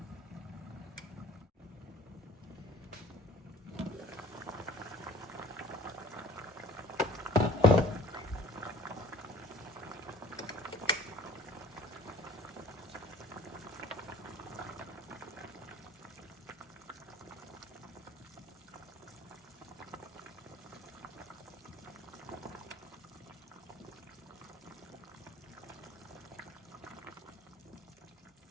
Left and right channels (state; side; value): normal; both; correlation 0.50